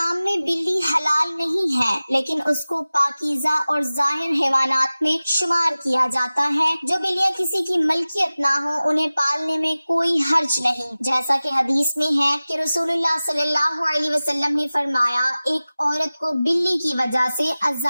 میں بلی حلال نہیں ہے لیکن اس کو پاکیزہ اور ظاہر حیوانات میں شمار کیا جاتا ہے۔ جو بلیاں کسی کی ملکیت نہ ہو انہیں پالنے میں کوئی حرج نہیں، جیسا کہ حدیث میں ہے کہ رسول اللہ صلی اللہ علیہ وسلم نے فرمایا، ایک عورت کو بلی کی وجہ سے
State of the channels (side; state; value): both; inverted; correlation -0.97